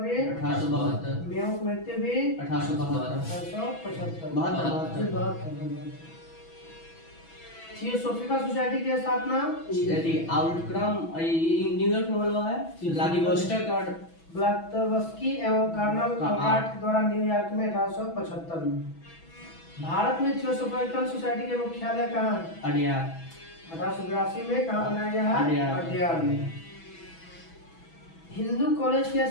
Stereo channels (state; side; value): late; right; 6.1 ms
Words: 1872 मेयो मृत्यु भी 1872 1875। थियोसोफिकल सोसाइटी की स्थापना यदि आउटक्रम न्यूयॉर्क में हुआ है व्लादिवोस्टोक और ब्लास्तवस्की एवं कर्नल कॉनराड के द्वारा न्यूयॉर्क में 1875 में। भारत में थियोसोफिकल सोसाइटी के मुख्यालय कहाँ है? अडियार 1882 में कहाँ बनाया गया है? अडियार। अडियार में। हिंदू कॉलेज की